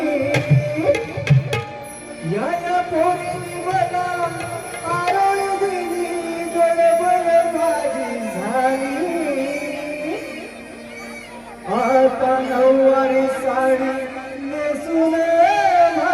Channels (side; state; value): both; identical; correlation 1.00